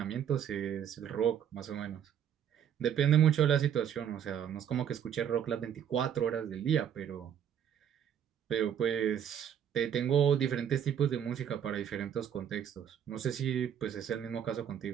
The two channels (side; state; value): left; quieter; 9.1 dB